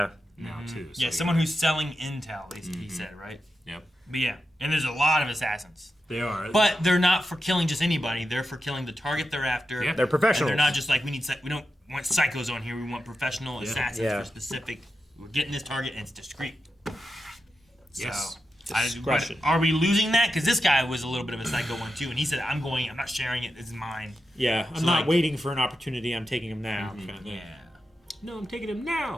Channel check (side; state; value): both; normal; correlation 0.89